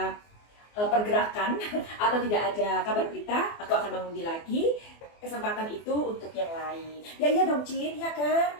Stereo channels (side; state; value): right; late; 24 ms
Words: pergerakan atau tidak ada kabar berita, aku akan mengundi lagi. Kesempatan itu untuk yang lain. Ya iya dong, Cin, ya kan?